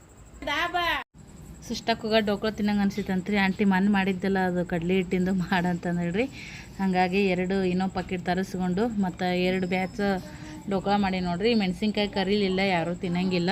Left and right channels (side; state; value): both; identical; correlation 1.00